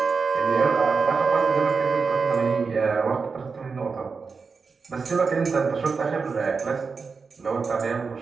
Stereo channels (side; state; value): left; quieter; 4.9 dB